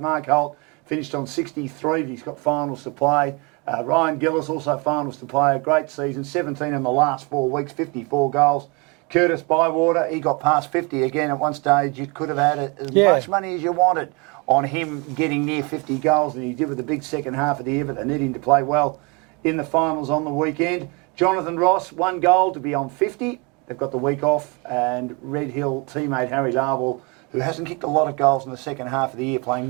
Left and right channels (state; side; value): quieter; left; 30.0 dB